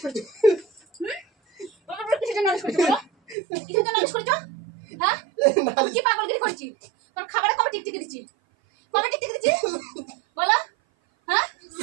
করেছো? বাপের বাড়ি কিসের জন্য নালিশ করেছো বলো? কিসের জন্য নালিশ করেছো? হ্যাঁ, আমি কি পাগলগিরি করছি? তোর খাবারে কবে টিকটিকি দিচ্ছি? কবে টিকটিকি দিচ্ছি বলো? হ্যাঁ,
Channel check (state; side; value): drops out; left; at 3.4 s